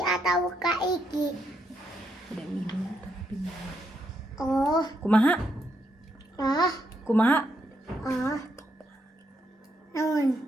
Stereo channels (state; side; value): normal; both; correlation 0.78